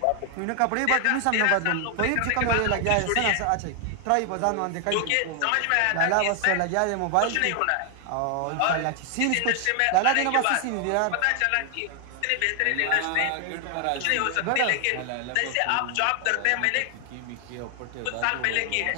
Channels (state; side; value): different; both; correlation 0.00